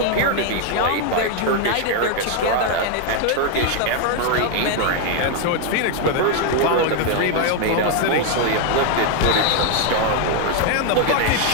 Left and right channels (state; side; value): different; both; correlation 0.01